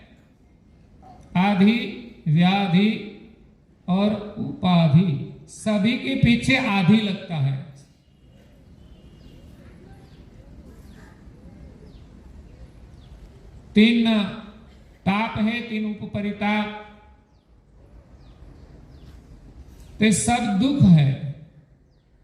आधि, व्याधि और उपाधि, सभी के पीछे आधि लगता है। तीन ताप है, तीन उपपरिताप, तो सब दुख है।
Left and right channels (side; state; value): both; identical; correlation 1.00